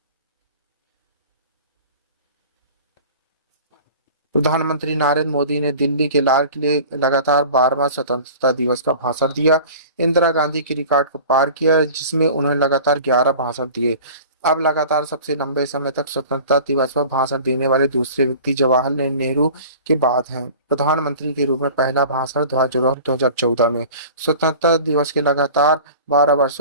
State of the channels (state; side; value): inverted; both; correlation -0.41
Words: प्रधानमंत्री नरेंद्र मोदी ने दिल्ली के लाल किले लगातार 12वां स्वतंत्रता दिवस का भाषण दिया। इंदिरा गांधी की रिकॉर्ड को पार किया, जिसमें उन्होंने लगातार 11 भाषण दिए। अब लगातार सबसे लंबे समय तक स्वतंत्रता दिवस पर भाषण देने वाले दूसरे व्यक्ति जवाहरलाल नेहरू के बाद हैं। प्रधानमंत्री के रूप में पहला भाषण 2014 में। स्वतंत्रता दिवस के लगातार 12